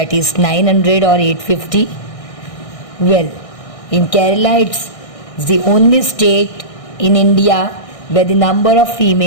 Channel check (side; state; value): right; late; 1.6 ms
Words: is 900 or 850. Well, in Kerala it's the only state in India where the number of